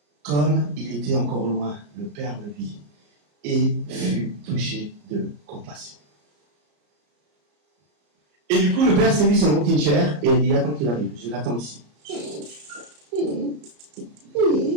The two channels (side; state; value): left; late; 34 ms